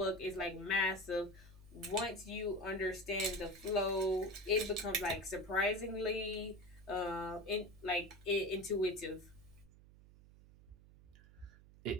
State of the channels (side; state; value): right; noise; hum, 22 dB below the sound